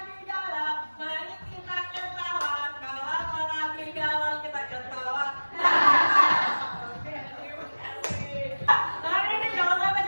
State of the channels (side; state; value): both; inverted; correlation -1.00